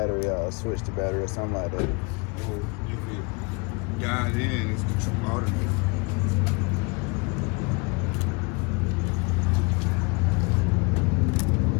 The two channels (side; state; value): right; quieter; 29.9 dB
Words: out or switch the battery or something like that. Or you could dial in, it's the true alternator.